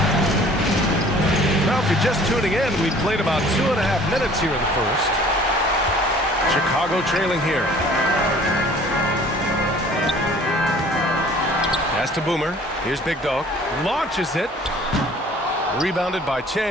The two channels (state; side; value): normal; both; correlation 0.52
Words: Now, if you're just tuning in, we've played about 2.5 minutes here in the first. Chicago trailing here. Pass to Boomer. Here's Big Dog. Launches it. Rebounded by